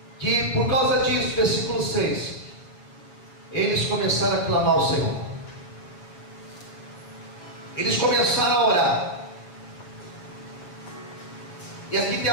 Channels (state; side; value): late; right; 7.2 ms